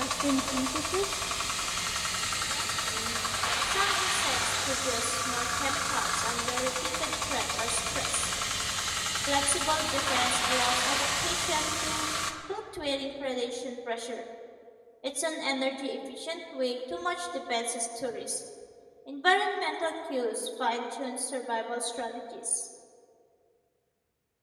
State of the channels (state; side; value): identical; both; correlation 1.00